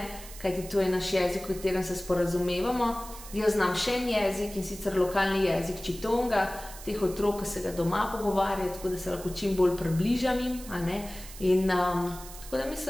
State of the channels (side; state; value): right; noise; hiss, 15 dB below the sound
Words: kajti to je naš jezik, v katerem se sporazumevamo. Jaz znam še en jezik, in sicer lokalni jezik Čitonga, teh otrok, ki se ga doma pogovarjajo, tako da se lahko čim bolj približam jim. In tako da